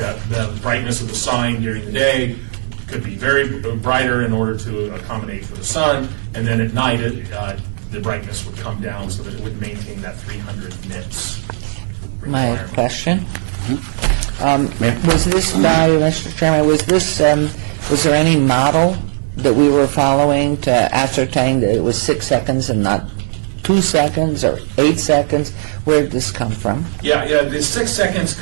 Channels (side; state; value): left; silent; 68 dB below the other